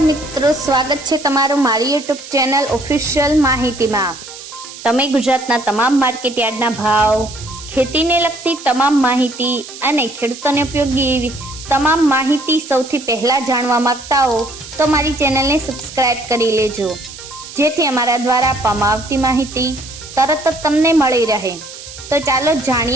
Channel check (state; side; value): noise; right; hiss, 14 dB below the sound